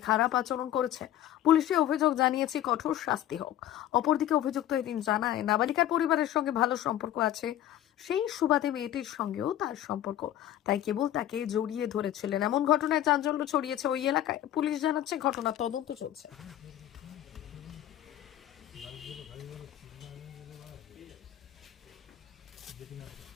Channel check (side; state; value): right; quieter; 12.2 dB